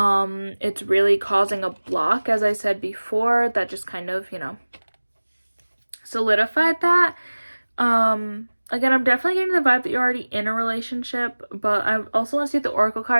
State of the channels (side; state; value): both; inverted; correlation -1.00